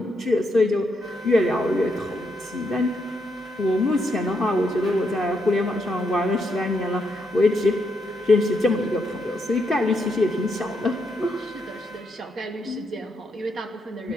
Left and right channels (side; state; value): both; normal; correlation 0.79